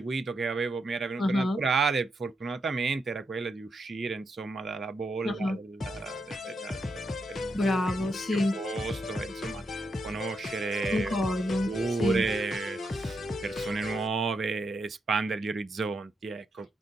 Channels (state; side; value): normal; both; correlation 0.81